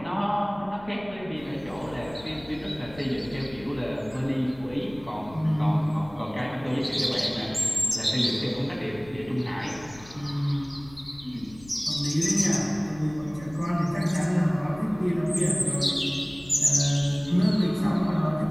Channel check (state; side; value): noise; left; rumble, 21 dB below the sound